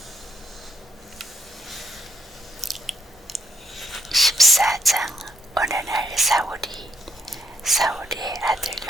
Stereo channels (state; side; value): normal; both; correlation 0.77